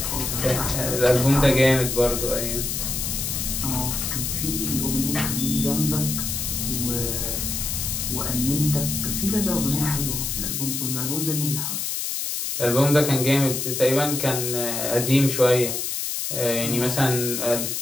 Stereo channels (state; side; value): noise; left; hiss, 2 dB below the sound